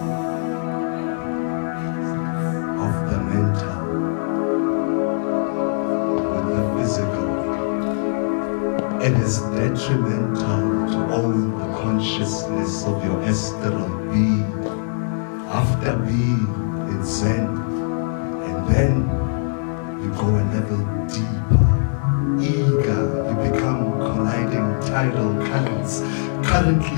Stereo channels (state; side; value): silent; right; 59 dB below the other